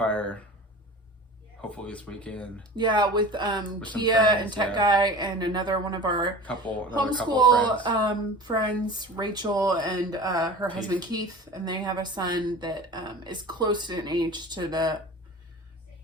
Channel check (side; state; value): both; normal; correlation 0.37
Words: Hopefully this weekend. Yeah, with Kia and Tech Guy and another one of our homeschool friends, Rachel and her husband Keith, and they have a son that is close in age to the